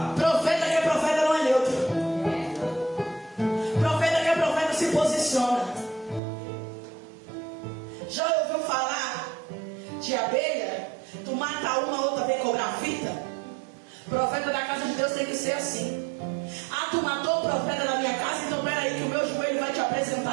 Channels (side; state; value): left; drops out; at 6.2 s